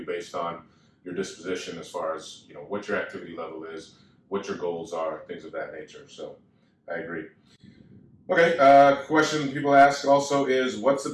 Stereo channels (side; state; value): both; identical; correlation 1.00